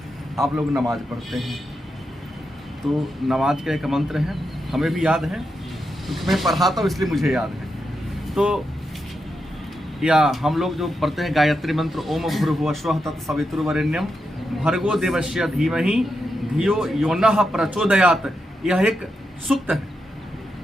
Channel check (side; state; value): both; normal; correlation 0.85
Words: आप लोग नमाज पढ़ते हैं तो नमाज का एक मंत्र है, हमें भी याद है क्योंकि मैं पढ़ाता हूँ इसलिए मुझे याद है। तो या हम लोग जो पढ़ते हैं गायत्री मंत्र, ओम भूर्भुवः स्वः तत्सवितुर्वरेण्यम भर्गो देवस्य धीमहि धियो यो नः प्रचोदयात्, यह एक सूक्त है।